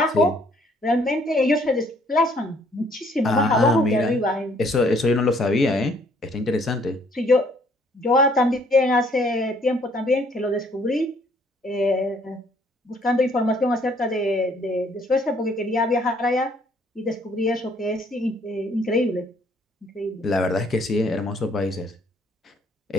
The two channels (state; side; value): normal; both; correlation 0.63